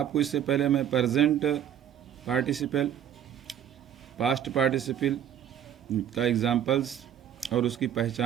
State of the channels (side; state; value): left; quieter; 9.9 dB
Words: इससे पहले मैं प्रेजेंट पार्टिसिपल, पास्ट पार्टिसिपल का एग्जांपल्स और उसकी